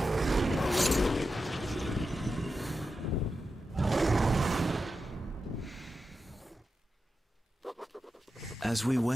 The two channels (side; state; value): both; normal; correlation 0.90